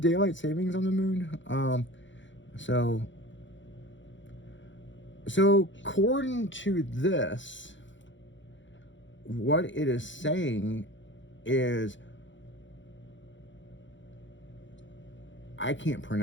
savings on the moon? So according to this, what it is saying is, I can't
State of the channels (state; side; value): late; right; 0.54 ms